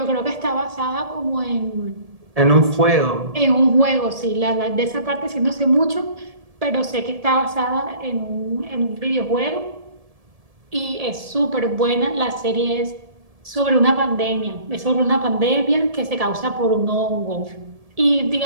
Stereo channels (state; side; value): late; left; 1.7 ms